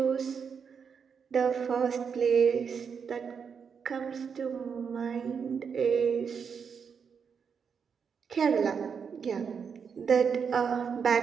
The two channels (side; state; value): left; quieter; 6.5 dB